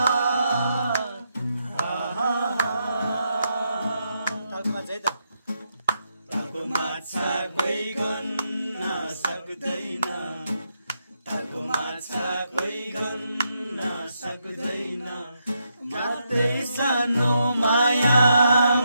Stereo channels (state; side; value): inverted; both; correlation -0.81